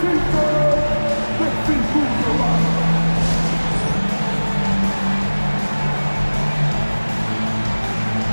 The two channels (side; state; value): both; inverted; correlation -1.00